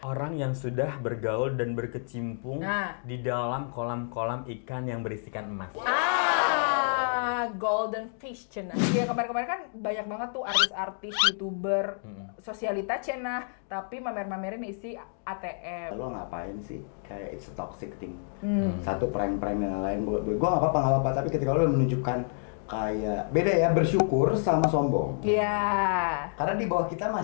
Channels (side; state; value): right; silent; digital silence